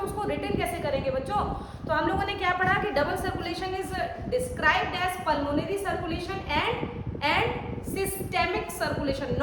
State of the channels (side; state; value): both; identical; correlation 1.00